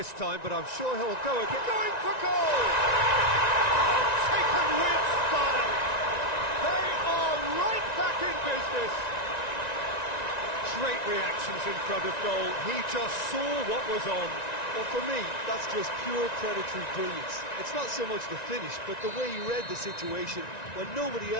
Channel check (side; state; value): right; late; 1.9 ms